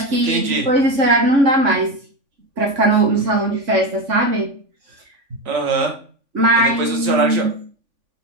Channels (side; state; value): left; late; 3.5 ms